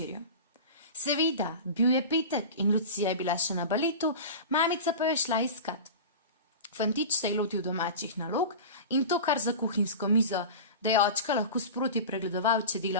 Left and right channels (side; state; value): both; inverted; correlation -0.31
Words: Seveda, bil je petek in Lucija je bila še na baletu, mamica pa je šla iskat. Fantič se je lotil domačih nalog in to kar za kuhinjsko mizo, da je očka lahko sproti pregledoval, če